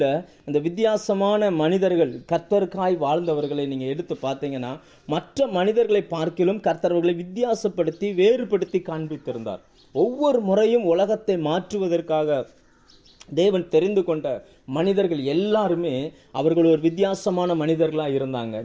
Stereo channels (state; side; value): identical; both; correlation 1.00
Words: இந்த வித்தியாசமான மனிதர்கள், கர்த்தருக்காய் வாழ்ந்தவர்களை நீங்கள் எடுத்து பார்த்தீங்கன்னா, மற்ற மனிதர்களை பார்க்கிலும் கர்த்தர்களை வித்தியாசப்படுத்தி வேறுபடுத்தி காண்பித்திருந்தார். ஒவ்வொரு முறையும் உலகத்தை மாற்றுவதற்காக தேவன் தெரிந்து கொண்ட மனிதர்கள் எல்லாருமே அவர்கள் ஒரு வித்தியாசமான மனிதர்களாக இருந்தாங்க.